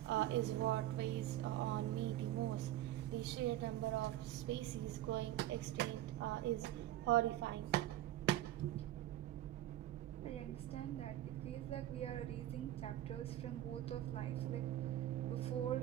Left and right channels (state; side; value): quieter; left; 13.8 dB